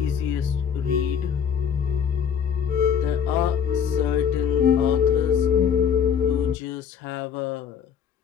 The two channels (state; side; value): quieter; right; 7.6 dB